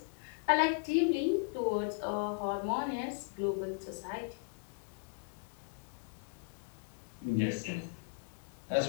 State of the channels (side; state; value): right; quieter; 35.6 dB